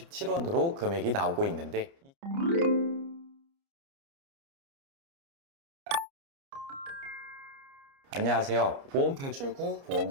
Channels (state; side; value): late; left; 29 ms